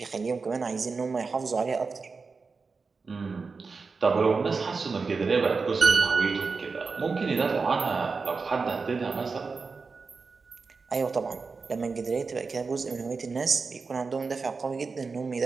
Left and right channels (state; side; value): quieter; left; 4.6 dB